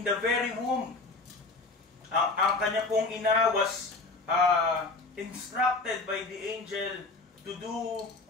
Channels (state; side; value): quieter; right; 3.5 dB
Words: the very womb. Ang kanya pong ina was instructed by the angel to do